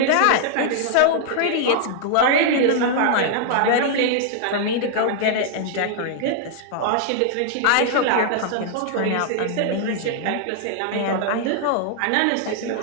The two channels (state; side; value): different; both; correlation -0.01